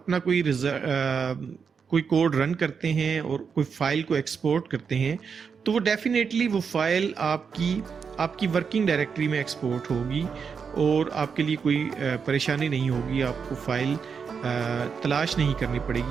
कोई कोड रन करते हैं और कोई फाइल को एक्सपोर्ट करते हैं तो वो डेफिनेटली वो फाइल आपकी वर्किंग डायरेक्टरी में एक्सपोर्ट होगी और आपके लिए कोई परेशानी नहीं होगी। आपको फाइल तलाश नहीं करनी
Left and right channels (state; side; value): quieter; left; 6.1 dB